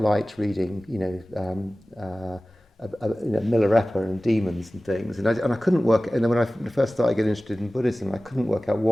reading, Milarepa and demons and things, and I couldn't work. And then when I first started getting interested in Buddhism, I couldn't work out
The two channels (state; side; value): normal; both; correlation 0.97